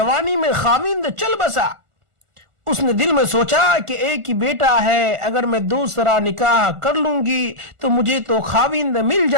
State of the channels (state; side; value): late; left; 1.4 ms